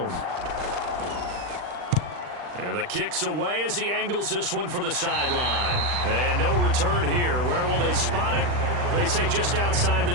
And the kick's away as he angles this one for the sideline. And no return here. Where will they spot it? They say just outside the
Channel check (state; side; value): late; left; 40 ms